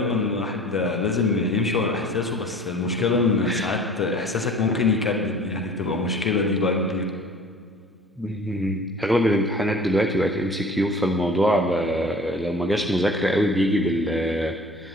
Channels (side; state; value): both; normal; correlation 0.45